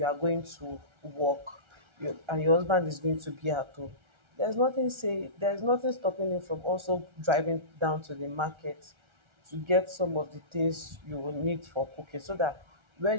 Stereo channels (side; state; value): left; late; 1.3 ms